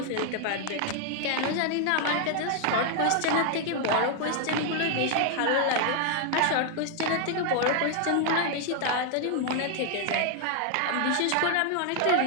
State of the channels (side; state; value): both; different; correlation 0.00